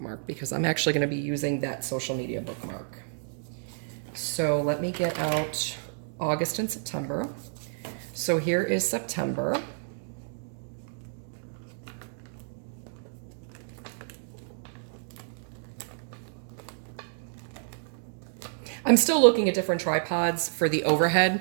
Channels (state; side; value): silent; left; digital silence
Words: because I'm actually going to be using that social media bookmark. So let me get out August and September. So here is September. I'm still looking at different tripods for the